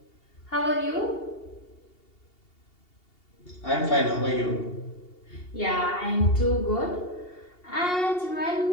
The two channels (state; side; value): late; right; 2.8 ms